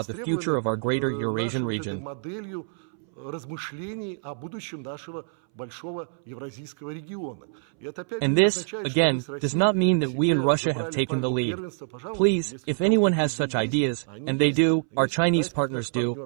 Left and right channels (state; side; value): silent; left; 61 dB below the other